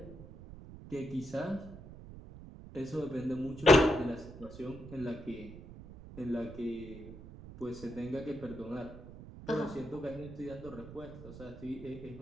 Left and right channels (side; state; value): right; noise; rumble, 14 dB below the sound